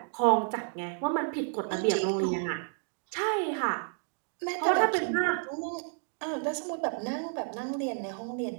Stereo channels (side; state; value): left; silent; 56 dB below the other